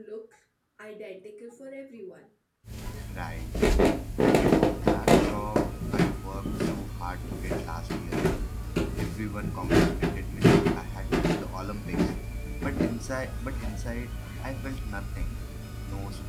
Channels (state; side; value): identical; both; correlation 1.00